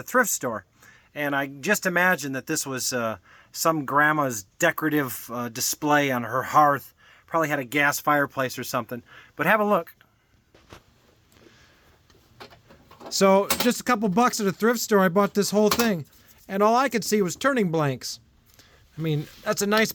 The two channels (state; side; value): identical; both; correlation 1.00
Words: thrift store. And I just imagined that this was some grandma's decorative display on her hearth. Probably had a gas fireplace or something. But have a look. So just a couple bucks at a thrift store, I bought this whole thing. And all I could see was turning blanks. I mean, that's a nice